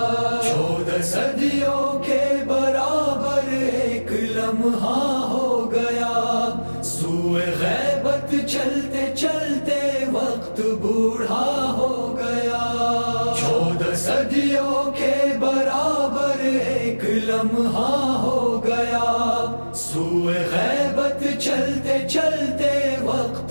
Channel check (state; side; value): inverted; both; correlation -1.00